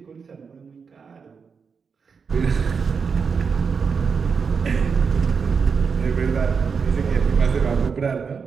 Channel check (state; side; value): quieter; left; 5.7 dB